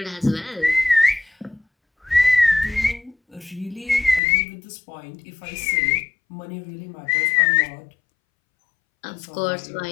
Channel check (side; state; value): right; drops out; at 4.2 s